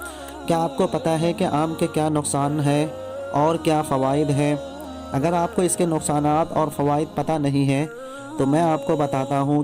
क्या आपको पता है कि आम के क्या नुकसान हैं और क्या फ़वाइद हैं? अगर आपको इसके नुकसानात और फ़वाइद पता नहीं है तो मैं आपको बताता हूँ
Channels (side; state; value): both; identical; correlation 1.00